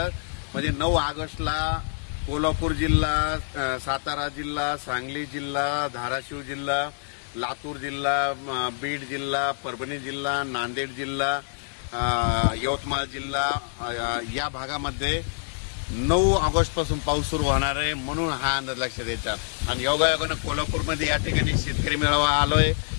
म्हणजे 9 ऑगस्टला कोल्हापूर जिल्हा, सातारा जिल्हा, सांगली जिल्हा, धाराशिव जिल्हा, लातूर जिल्हा, बीड जिल्हा, परभणी जिल्हा, नांदेड जिल्हा, यवतमाळ जिल्हा या भागामध्ये 9 ऑगस्ट पासून पाऊस सुरू होणार आहे, म्हणून हा अंदाज लक्षात द्यायचा। आणि योगायोगाने कोल्हापूरमध्ये या ठिकाणी शेतकरी मेळावा आलोय,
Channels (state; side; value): silent; right; digital silence